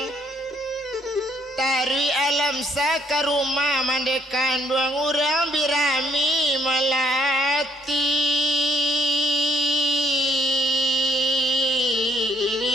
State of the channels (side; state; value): both; normal; correlation 0.66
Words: Tarui alam sa ke rumah mandekan doang orang birami melati.